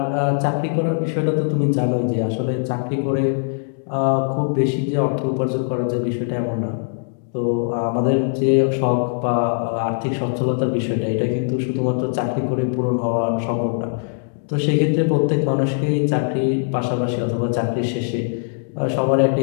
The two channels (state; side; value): silent; right; digital silence